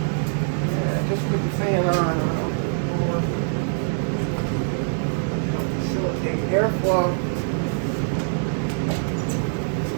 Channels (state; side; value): silent; left; digital silence